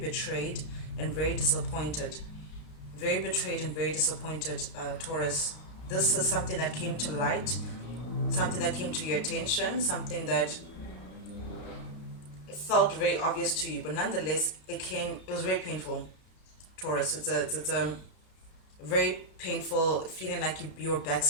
and very disappointed. Very betrayed and very disappointed, Taurus. This is something that came to light, something that came to your attention, something that felt very obvious to you, but nonetheless, it was very painful, Taurus. It's a very painful feeling like you were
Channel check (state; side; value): late; right; 33 ms